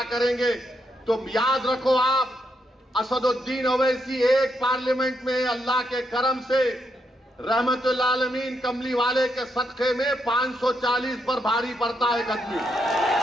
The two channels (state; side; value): normal; both; correlation 0.79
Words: करेंगे। तो याद रखो आप, असदुद्दीन ओवैसी एक पार्लियामेंट में अल्लाह के करम से रहमतुल आलमीन कमली वाले के सदक़े में 540 पर भारी पड़ता है आदमी।